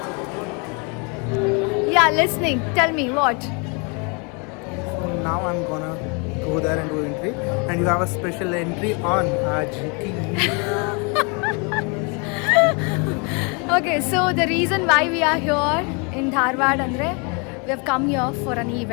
Yeah, listening. Tell me what? Now I'm gonna go there and do entry, and you have a special entry on GT. Okay, so the reason why we are here in Dharwad andre we have come here for an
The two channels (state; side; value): quieter; right; 33.4 dB